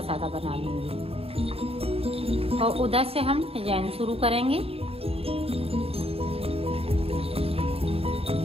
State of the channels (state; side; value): late; left; 0.28 ms